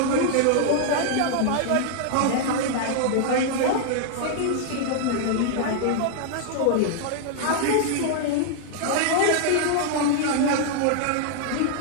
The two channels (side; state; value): both; different; correlation 0.00